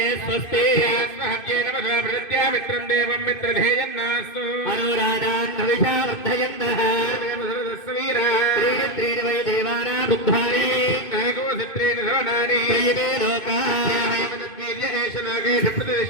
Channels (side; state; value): right; late; 2.5 ms